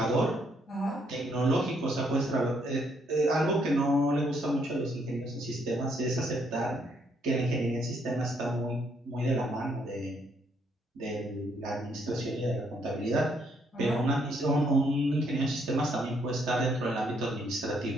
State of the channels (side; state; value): both; normal; correlation 0.71